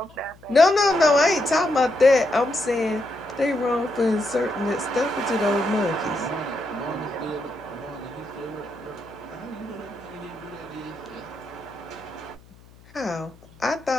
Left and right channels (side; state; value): left; noise; hum, 25 dB below the sound